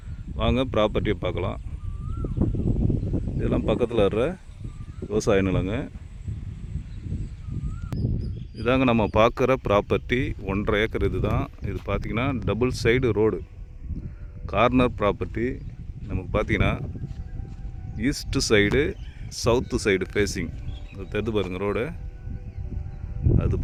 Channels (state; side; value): identical; both; correlation 1.00